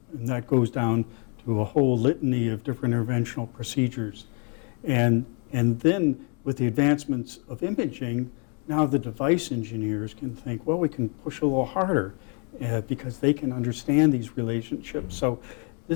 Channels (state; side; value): quieter; right; 37.9 dB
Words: that goes down to a whole litany of different interventional procedures. And then with the advancements of imaging, now the device engineers can think, well, we can push a little harder because they can understand these relationships. So